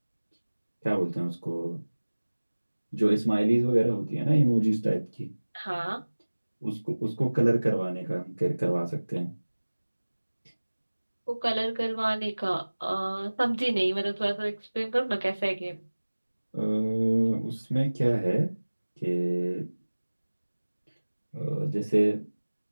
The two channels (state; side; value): inverted; both; correlation -1.00